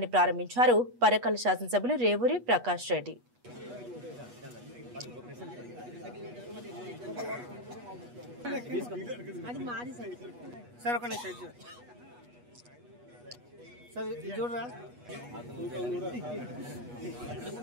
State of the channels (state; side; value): late; left; 8.2 ms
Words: ప్రారంభించారు పరకాల శాసనసభ్యులు రేవూరి ప్రకాష్ రెడ్డి.